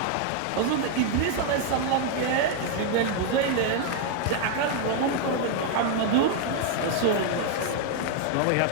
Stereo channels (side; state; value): both; different; correlation 0.00